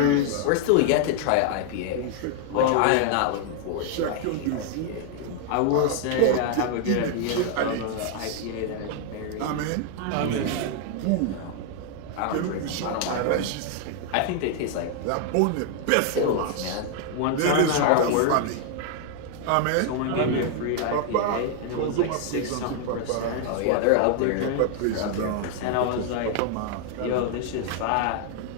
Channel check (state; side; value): different; both; correlation 0.00